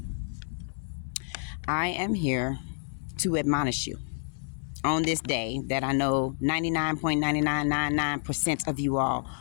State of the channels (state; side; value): silent; right; 59 dB below the other